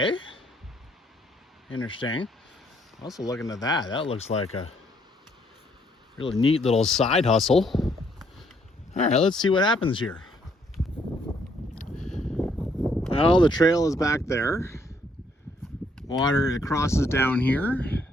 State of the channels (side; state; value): both; normal; correlation 0.69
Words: Interesting. Also looking at that. That looks like a really neat little side hustle. All right, let's see what happens here. Well, the trail is back there. Water, it crosses down here.